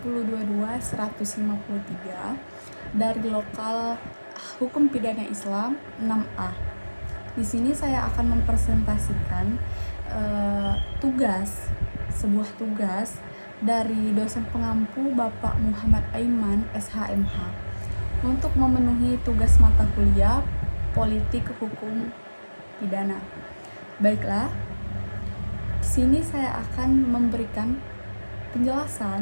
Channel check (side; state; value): both; inverted; correlation -1.00